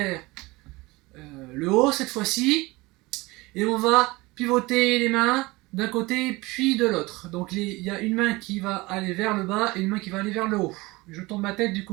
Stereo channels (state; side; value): quieter; left; 22.3 dB